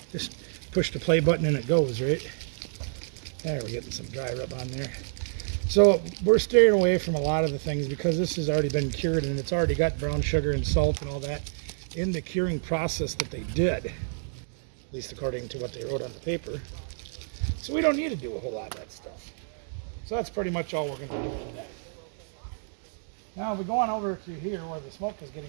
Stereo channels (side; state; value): left; silent; digital silence